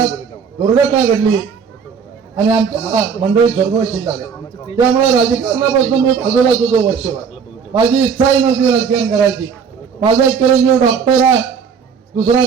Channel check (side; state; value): left; quieter; 6.4 dB